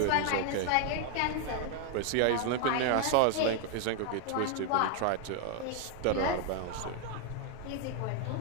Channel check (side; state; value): both; different; correlation 0.00